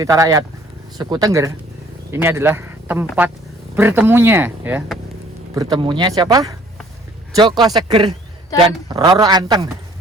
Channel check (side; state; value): both; normal; correlation 0.57